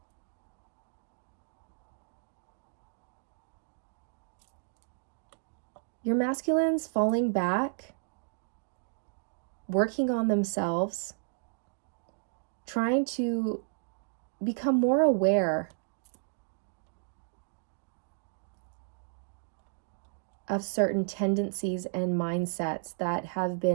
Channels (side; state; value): left; silent; digital silence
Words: Your masculine's falling back, working on themselves, trying to become more aware of certain tendencies and mindsets that have